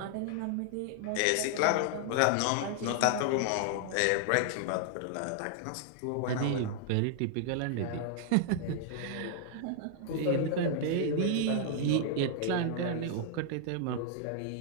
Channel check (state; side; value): different; both; correlation -0.01